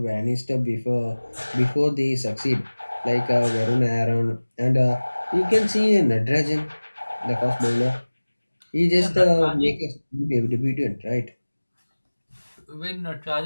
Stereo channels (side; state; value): both; inverted; correlation -1.00